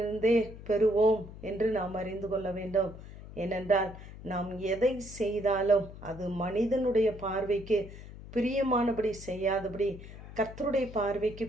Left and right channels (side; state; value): left; noise; hum, 14 dB below the sound